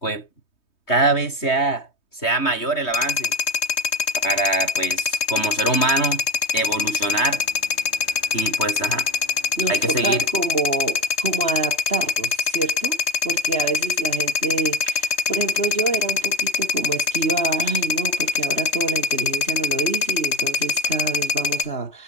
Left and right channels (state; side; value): late; right; 3.2 ms